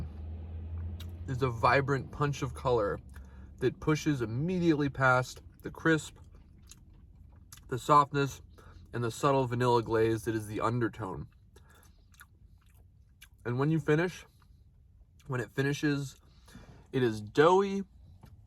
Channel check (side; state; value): both; identical; correlation 1.00